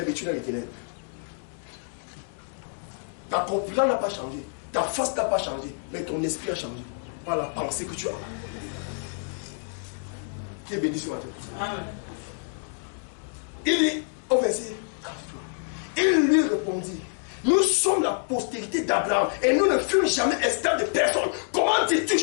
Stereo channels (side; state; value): right; silent; digital silence